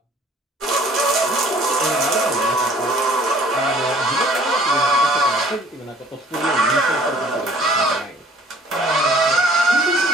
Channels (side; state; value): both; normal; correlation 0.53